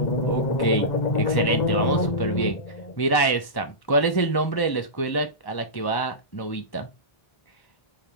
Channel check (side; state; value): right; late; 1.1 ms